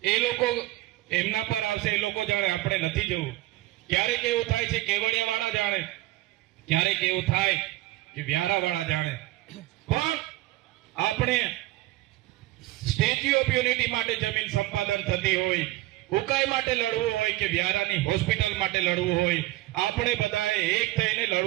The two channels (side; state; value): left; quieter; 17.9 dB